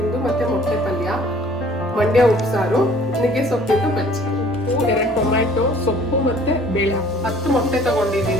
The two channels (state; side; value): normal; both; correlation 0.54